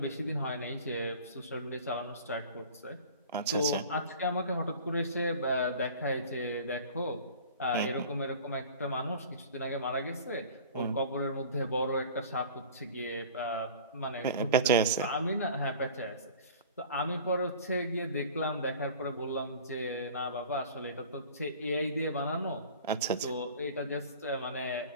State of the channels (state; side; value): inverted; both; correlation -0.41